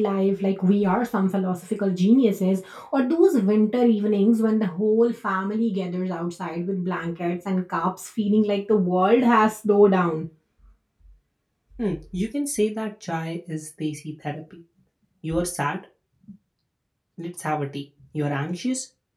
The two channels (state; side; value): identical; both; correlation 1.00